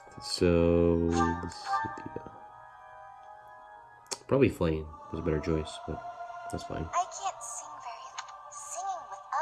So Lysithea. Probably Flame was a better choice, but that's fine. I can't sing singing with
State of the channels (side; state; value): both; identical; correlation 1.00